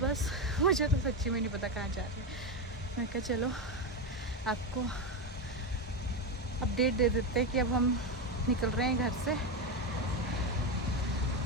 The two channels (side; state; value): both; normal; correlation 0.12